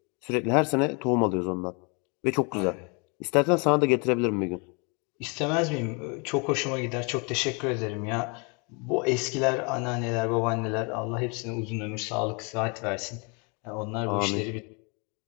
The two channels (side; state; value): right; quieter; 32.7 dB